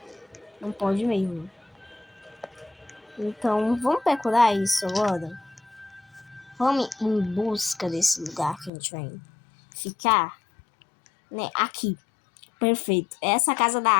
Não pode mesmo. Então, vamos procurar isso agora? Vamos em busca desse lugar que a gente vai ficar, né? Aqui. Perfeito. É essa casa da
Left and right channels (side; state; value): right; drops out; at 8.7 s